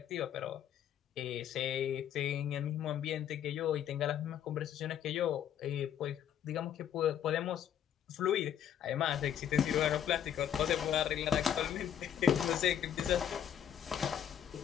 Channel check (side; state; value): right; quieter; 9.5 dB